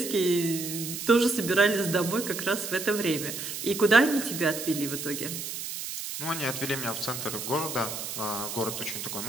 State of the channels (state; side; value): noise; right; hiss, 6 dB below the sound